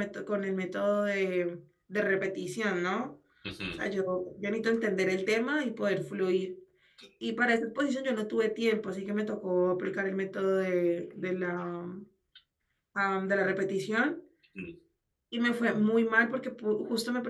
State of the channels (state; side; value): identical; both; correlation 1.00